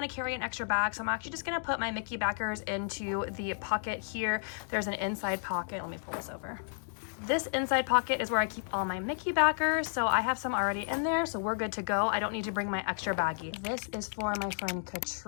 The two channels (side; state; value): right; silent; digital silence